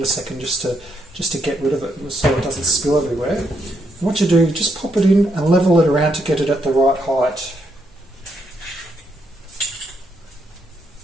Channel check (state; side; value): normal; both; correlation 0.78